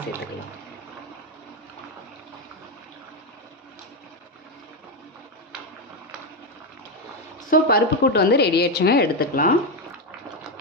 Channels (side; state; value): both; normal; correlation 0.09